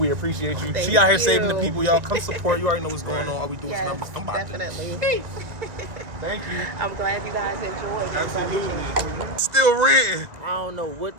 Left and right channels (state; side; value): late; left; 1.9 ms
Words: appreciate you. Thank She out here you. saving the people, y'all. Come support. You already know what's going on. All we do is Yes, numbers. I'm about definitely. Thank you. I'm glad you guys enjoyed. Absolutely. Still renting. I don't know what